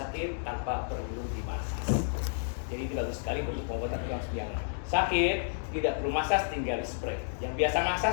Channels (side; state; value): right; silent; digital silence